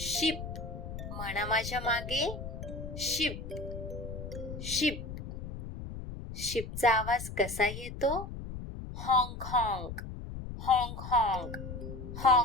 म्हणा माझ्या मागे शिप. शिप. शिपचा आवाज कसा येतो. हॉंक हॉंक. हॉंक हॉंक.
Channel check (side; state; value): left; noise; rumble, 8 dB below the sound